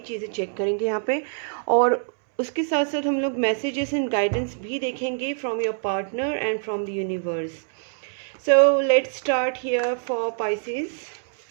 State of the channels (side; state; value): left; silent; 62 dB below the other